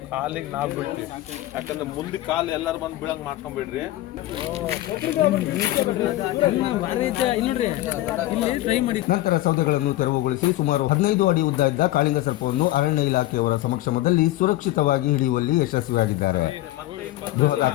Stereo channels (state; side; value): quieter; right; 16.2 dB